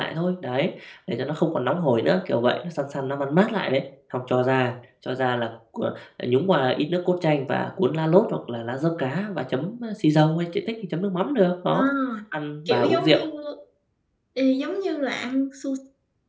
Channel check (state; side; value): identical; both; correlation 1.00